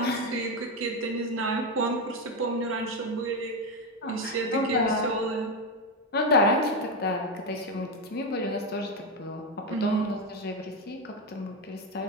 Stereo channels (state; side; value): normal; both; correlation 0.09